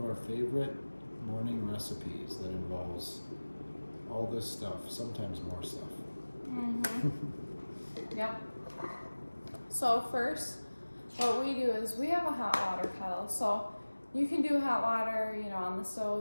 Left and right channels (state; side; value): inverted; both; correlation -1.00